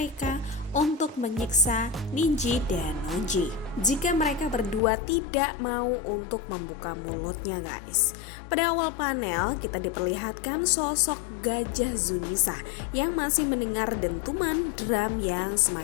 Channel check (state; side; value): drops out; right; at 4.8 s